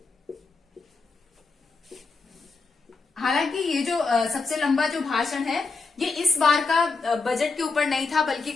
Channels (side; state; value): right; quieter; 4.2 dB